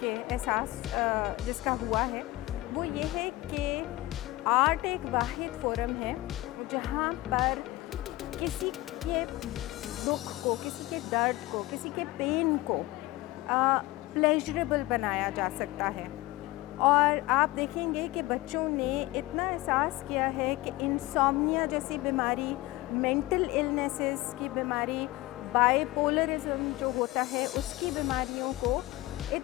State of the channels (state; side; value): quieter; right; 19.1 dB